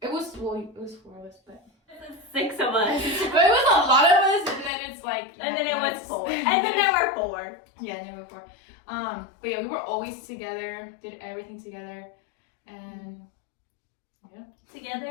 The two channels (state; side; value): drops out; right; at 4.7 s